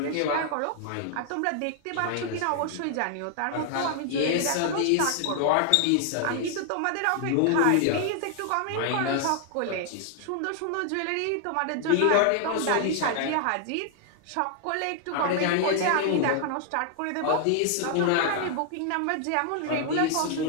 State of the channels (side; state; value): both; different; correlation 0.00